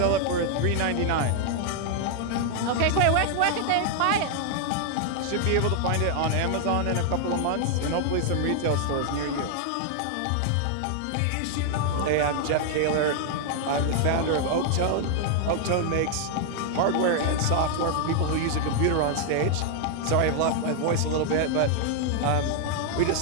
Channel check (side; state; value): both; different; correlation 0.00